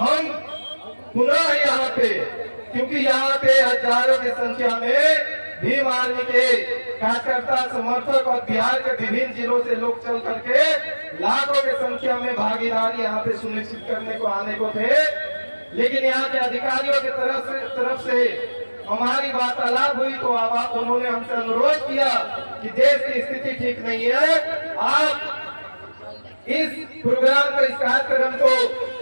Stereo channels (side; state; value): both; inverted; correlation -1.00